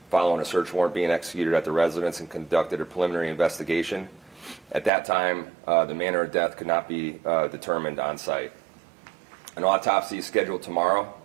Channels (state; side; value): drops out; left; at 4.9 s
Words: following a search warrant being executed at the residence and conducted a preliminary investigation. At that time, the manner of death could not be determined on site. An autopsy is scheduled tomorrow